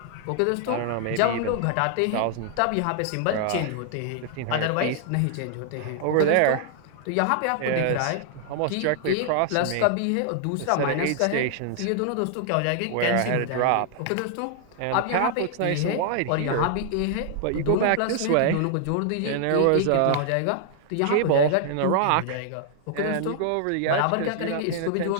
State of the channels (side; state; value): both; different; correlation 0.00